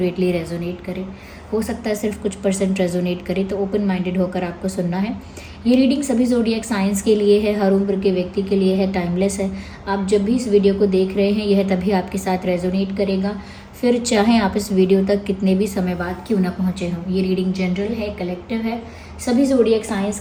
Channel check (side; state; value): both; identical; correlation 1.00